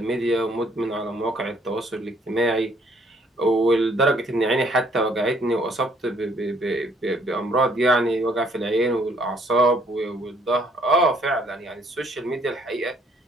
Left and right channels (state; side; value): normal; both; correlation 0.64